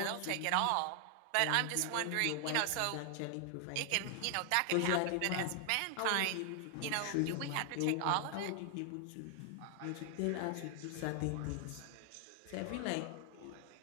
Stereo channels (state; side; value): different; both; correlation 0.00